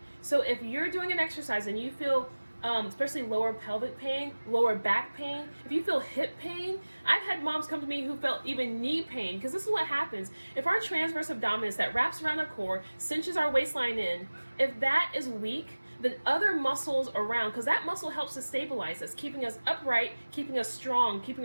So if you're doing an exercise and you feel, especially lower pelvic pain, lower back pain, if you feel hip pain, I've had moms come to me who felt even knee pain, because this is what happens. If our transverse abdominis that wraps around our core, cinches our waistline in, if that is weak, then other muscles around, because that muscle helps to stabilize us, keeping us upright, keeping us strong, keeping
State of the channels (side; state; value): both; inverted; correlation -1.00